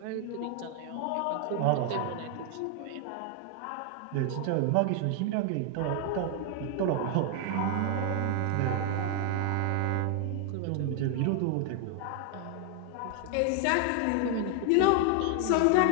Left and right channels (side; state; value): both; different; correlation 0.00